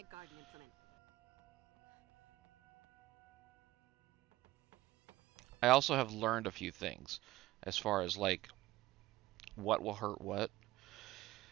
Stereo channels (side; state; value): left; quieter; 17.1 dB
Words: garden implement. I also have learned a few things, as far as, like, what will hurt what.